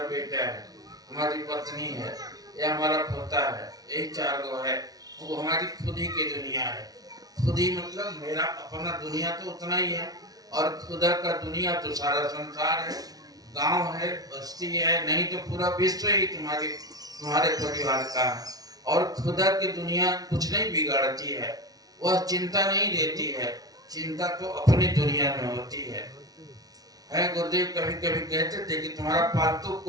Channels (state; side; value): late; left; 0.18 ms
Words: बेटा है, हमारी पत्नी है, या हमारा पोता है, यही चार गो है, वो हमारी खुदी की दुनिया है। खुदी मतलब मेरा अपना दुनिया तो उतना ही है, और खुदा का दुनिया तो सारा संसार है, गांव है, बस्ती है, नहीं तो पूरा विश्व ही तुम्हारे परिवार का है। और खुदा की दुनिया कुछ नहीं बिगाड़ती है, वह चिंता नहीं देती है, चिंता तो अपनी दुनिया में होती है। गुरुदेव कभी कभी कहते थे कि तुम्हारा पालतू